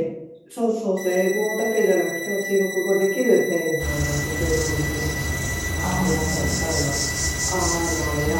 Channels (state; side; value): identical; both; correlation 1.00